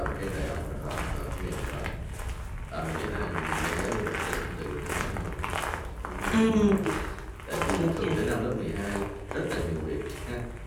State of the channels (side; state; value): both; identical; correlation 1.00